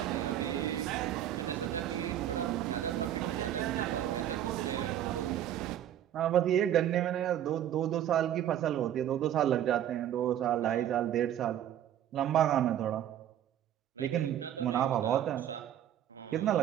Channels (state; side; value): quieter; left; 11.1 dB